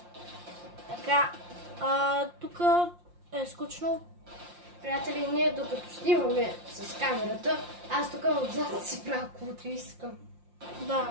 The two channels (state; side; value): late; left; 5.7 ms